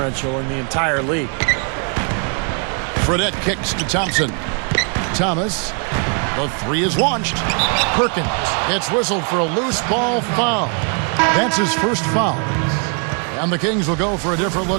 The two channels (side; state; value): left; quieter; 39.1 dB